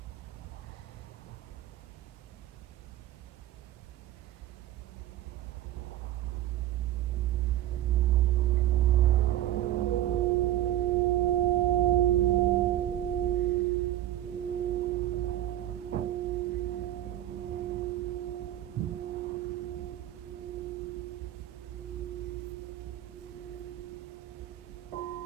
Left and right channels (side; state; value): left; quieter; 13.3 dB